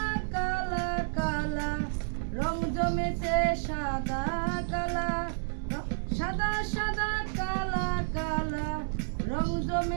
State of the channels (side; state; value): left; silent; digital silence